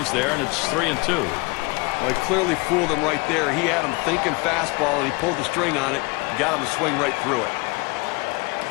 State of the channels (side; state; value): right; quieter; 26.6 dB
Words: there, and it's 3-2. Well, he clearly fooled him right there. He had him thinking fastball, and he pulled the string on it, got him to swing right through it.